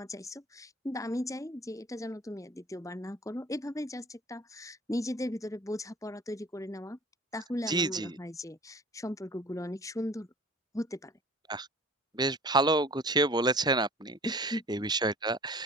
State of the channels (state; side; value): normal; both; correlation 0.45